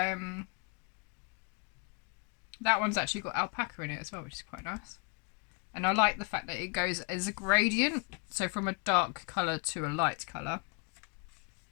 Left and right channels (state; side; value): quieter; right; 34.2 dB